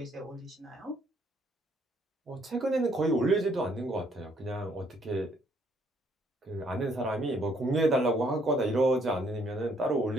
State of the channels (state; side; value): normal; both; correlation 0.67